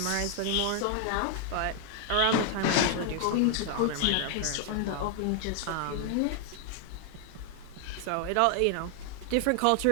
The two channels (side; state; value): both; different; correlation 0.00